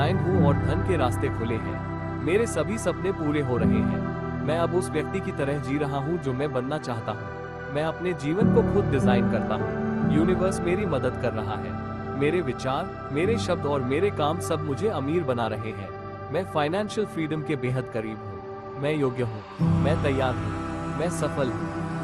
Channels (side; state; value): both; identical; correlation 1.00